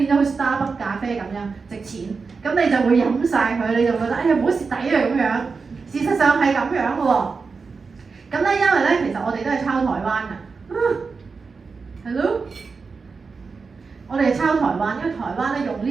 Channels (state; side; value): quieter; left; 4.8 dB